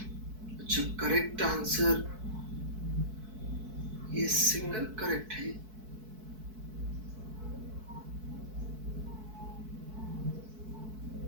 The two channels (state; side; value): late; left; 4.6 ms